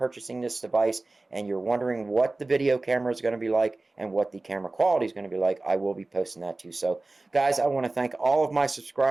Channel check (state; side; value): quieter; left; 3.1 dB